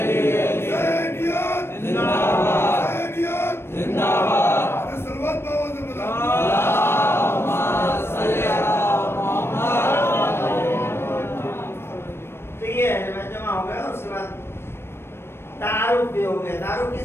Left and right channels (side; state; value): right; late; 0.12 ms